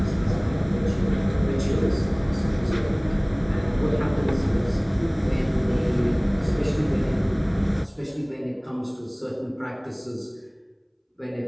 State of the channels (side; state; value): both; identical; correlation 1.00